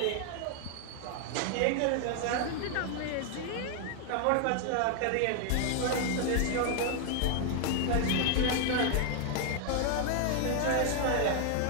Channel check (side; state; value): both; different; correlation 0.00